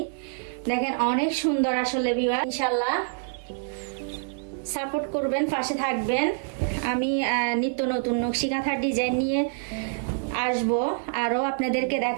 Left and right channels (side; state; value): left; silent; digital silence